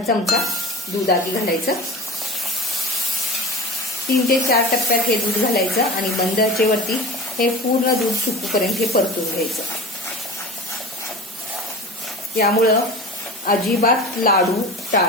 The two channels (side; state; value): both; normal; correlation 0.35